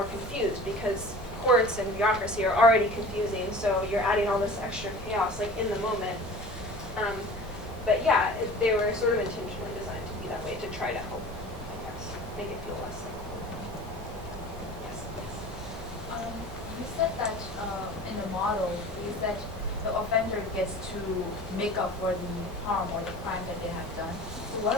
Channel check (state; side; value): normal; both; correlation 0.40